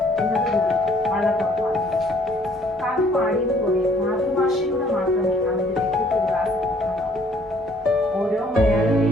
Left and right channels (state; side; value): normal; both; correlation 0.61